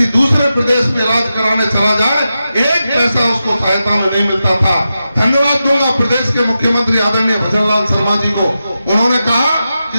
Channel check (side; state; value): both; inverted; correlation -0.90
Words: दूसरे प्रदेश में इलाज कराने चला जाए, एक पैसा उसको सहायता में नहीं मिलता था। धन्यवाद दूंगा प्रदेश के मुख्यमंत्री आदरणीय भजनलाल शर्मा जी को। उन्होंने कहा कि